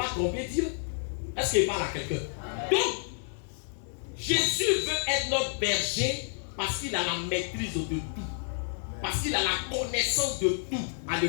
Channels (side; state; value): right; silent; 58 dB below the other